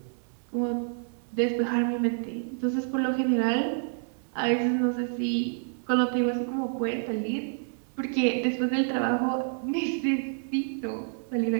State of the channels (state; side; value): silent; left; digital silence